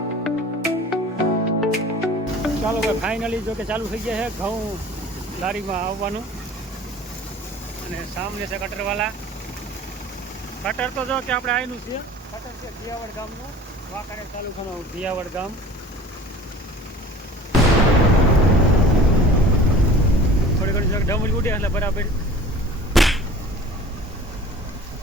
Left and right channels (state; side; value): normal; both; correlation 0.44